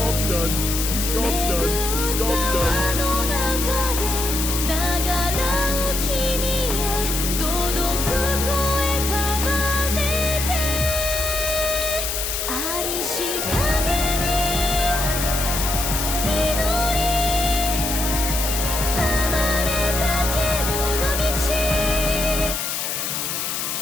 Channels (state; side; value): noise; left; hiss, 2 dB below the sound